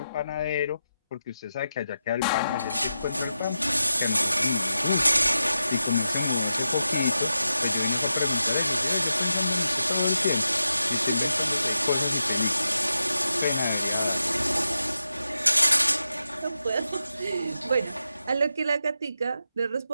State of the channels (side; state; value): both; inverted; correlation -0.89